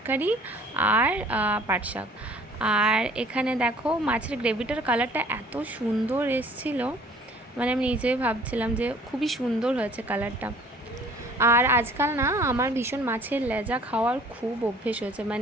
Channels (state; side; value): normal; both; correlation 0.53